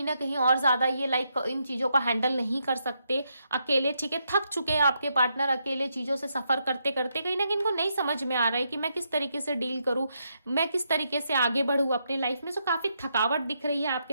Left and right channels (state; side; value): inverted; both; correlation -0.80